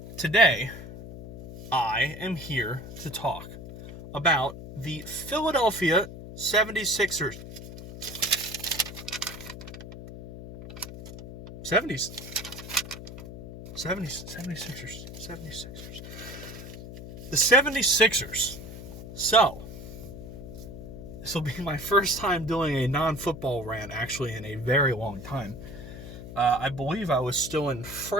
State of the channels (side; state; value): left; noise; hum, 12 dB below the sound